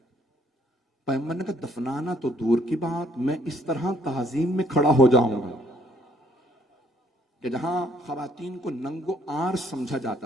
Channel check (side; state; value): both; normal; correlation 0.64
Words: پیغمبر نے کہا دفنانا تو دور کی بات, میں اس طرح تعظیم میں کھڑا ہو جاؤں گا کہ جہاں خواتین کو ننگو آر سمجھا